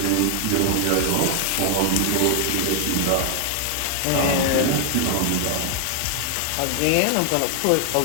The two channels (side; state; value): both; different; correlation 0.00